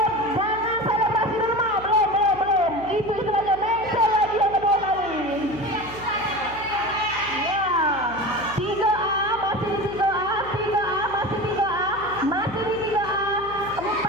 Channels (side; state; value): right; noise; hum, 16 dB below the sound